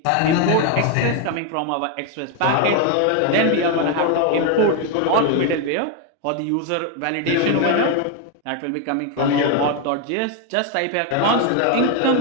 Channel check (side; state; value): both; different; correlation 0.01